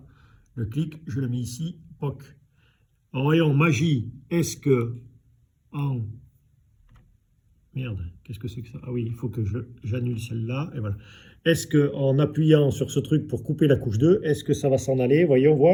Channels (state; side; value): identical; both; correlation 1.00